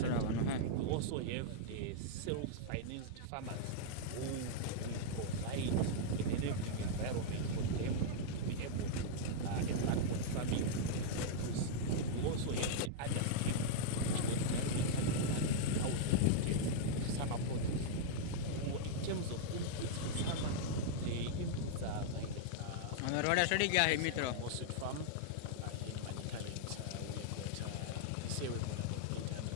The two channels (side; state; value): both; different; correlation -0.01